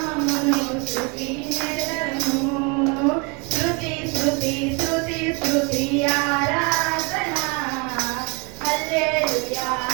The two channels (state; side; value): quieter; left; 31.7 dB